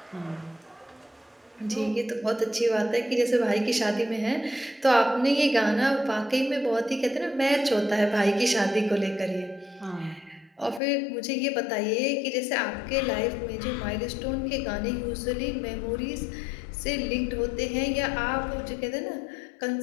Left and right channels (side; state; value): right; drops out; at 10.8 s